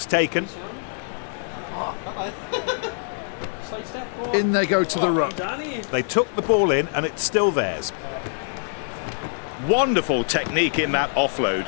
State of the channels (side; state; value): right; silent; digital silence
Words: taken. In they go to the ruck. They took the ball in and it's still theirs. Wonderful technique in that offload.